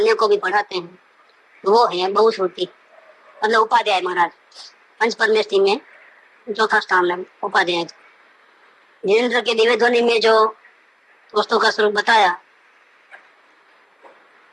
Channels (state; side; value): identical; both; correlation 1.00